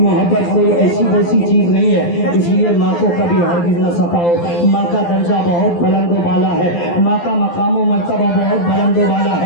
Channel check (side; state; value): right; late; 12 ms